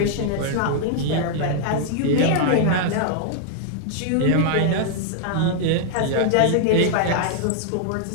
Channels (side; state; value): both; different; correlation -0.01